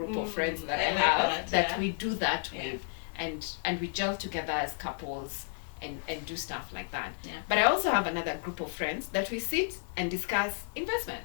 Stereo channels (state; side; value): silent; right; digital silence